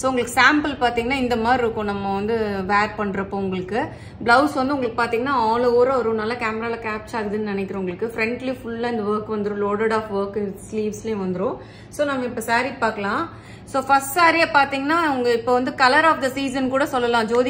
உங்களுக்கு சாம்பிள் பாத்தீங்கன்னா இந்த மாதிரி இருக்கும். நம்ம வந்து வேர் பண்றப்போ உங்களுக்கு பிளவுஸ் வந்து உங்களுக்கு பாத்தீங்கன்னா ஆல் ஓவர் ஒரு நல்ல கேமரால கேப்சர் ஆகுதுன்னு நினைக்கிறேன். உங்களுக்கு ஃப்ரண்ட்லி ஃபுல்லா இந்த ஒர்க் வந்துடும். லோடட் ஆஃப் ஒர்க் ஸ்லீவ்ஸ்லயும் வந்துடும். ஸோ நம்ம இப்ப சாரி பார்க்கலாம். ஸோ ஃபர்ஸ்ட் சாரியை பாத்தீங்கன்னா உங்க இப்போ வந்து கலர் ஆஃப் த சீசன் கூட சொல்லலாம்.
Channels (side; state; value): both; identical; correlation 1.00